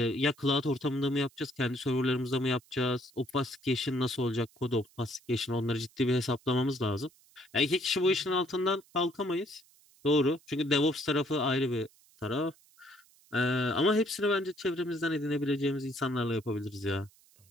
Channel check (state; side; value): noise; right; hiss, 29 dB below the sound